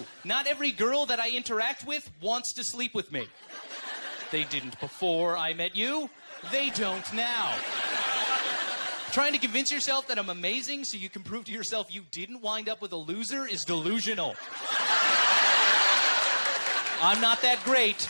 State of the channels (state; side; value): inverted; both; correlation -1.00